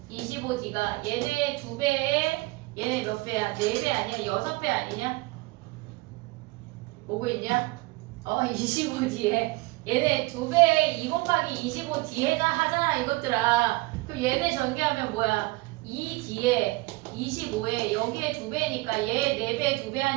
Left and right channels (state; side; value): quieter; left; 22.6 dB